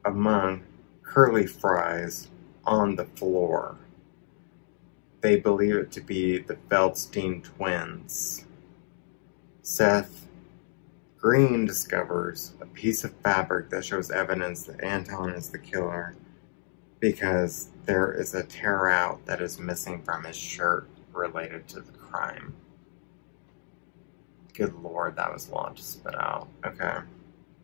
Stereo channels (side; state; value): right; silent; digital silence